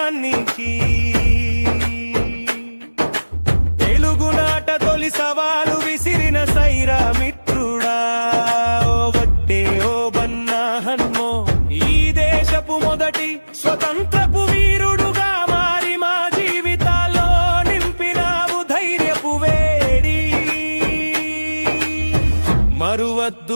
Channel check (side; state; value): both; inverted; correlation -1.00